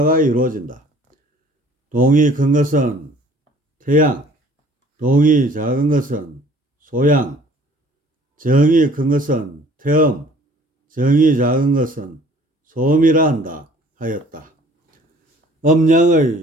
이루어진다. 동이 큰 것은 태양, 동이 작은 것은 소양, 정이 큰 것은 태음, 정이 작은 것은 소음이라 한다 하였다.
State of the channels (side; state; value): both; normal; correlation 0.53